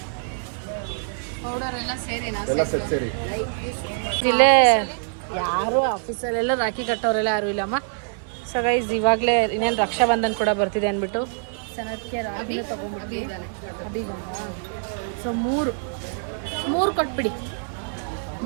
ಪೌಡರ್ ಎಲ್ಲ ಸೇರಿ ಎಲ್ಲ ಸೆಟ್ ಸೇರಿ ಇಲ್ಲೇ ಯಾರು ಆಫೀಸಲ್ಲೆಲ್ಲ ರಾಖಿ ಕಟ್ಟೋರೆಲ್ಲ ಯಾರು ಇಲ್ಲಮ್ಮ. ಸೊ ಗೈಸ್ ಇವಾಗಲೇ ಇನ್ನೇನು ರಕ್ಷಾಬಂಧನ್ ಕೂಡ ಬರ್ತಿದೆ ಅಂದ್ಬಿಟ್ಟು ಸನತ್ಗೆ ರಾಖಿನ ತೊಗೊಂಡ್ಬಿಟ್ಟು ಸೊ ಮೂರು ಕೊಟ್ಬಿಡಿ.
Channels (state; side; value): silent; left; digital silence